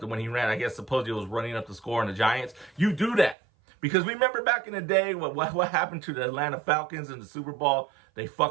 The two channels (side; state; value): left; drops out; at 3.4 s